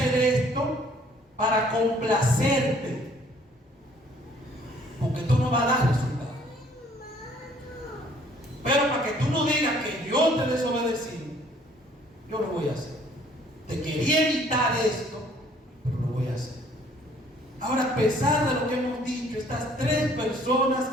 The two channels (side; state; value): both; normal; correlation 0.59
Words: esto para complacerte, porque esto no va a dar resultado. Pero para que tú no digas que yo te desobedecí, yo lo voy a hacer. Te quería evitar esto, pero lo voy a hacer. Ahora, a pesar de lo que hemos dicho, estas 3 personas